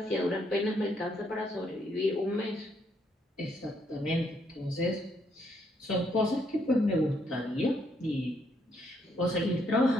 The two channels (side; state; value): both; normal; correlation 0.73